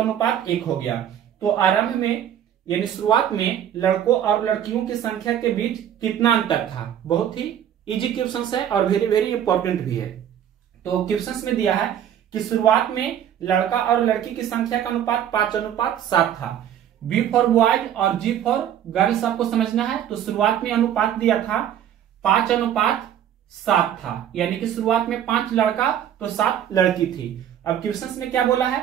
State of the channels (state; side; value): quieter; left; 10.1 dB